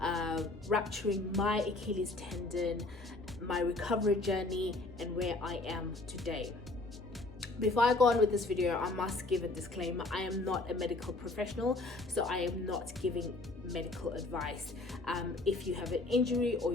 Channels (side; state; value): right; quieter; 3.0 dB